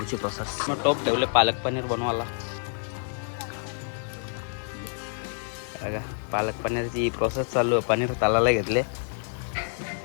प्रोसेस. मग टोप ठेवले पालक पनीर बनवायला. बघा पालक पनीरची प्रोसेस चालू आहे. पनीर तळायला घेतले.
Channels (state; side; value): silent; right; digital silence